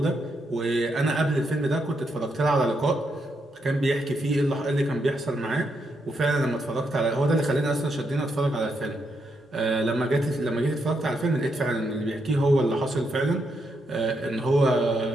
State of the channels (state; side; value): normal; both; correlation 0.80